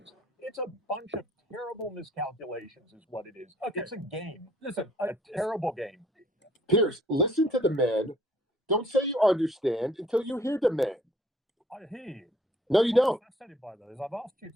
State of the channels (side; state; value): both; normal; correlation 0.60